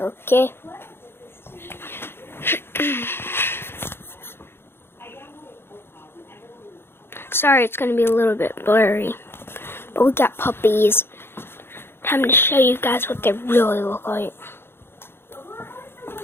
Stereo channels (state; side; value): late; right; 0.11 ms